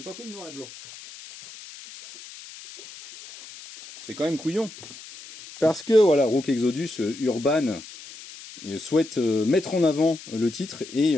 pas pris le noir et blanc. C'est quand même couillon. Parce que voilà, Rook Exodus, Urban souhaite mettre en avant le titre, et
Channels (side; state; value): left; noise; hiss, 16 dB below the sound